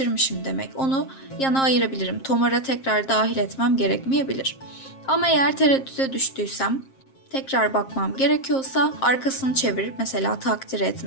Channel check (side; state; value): right; late; 7.5 ms